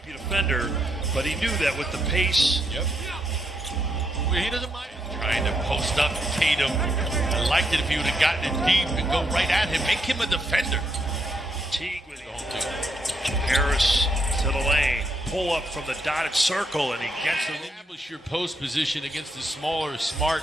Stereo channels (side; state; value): both; normal; correlation 0.77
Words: offender, but he knew that with the pace. Yep. He doesn't mind trying to post up Tatum. I liked it if he would have gotten it deep and go right at him. Make him a defender. Teague with Harris to the lane. Pull up from the dotted circle, and he gets the establish your post position against the smaller